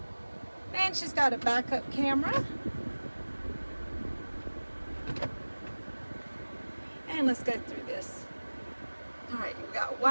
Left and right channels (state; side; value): inverted; both; correlation -1.00